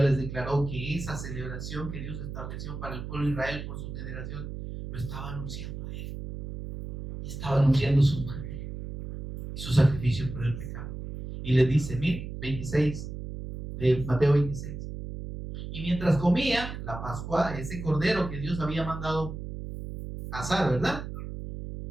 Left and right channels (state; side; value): noise; right; hum, 8 dB below the sound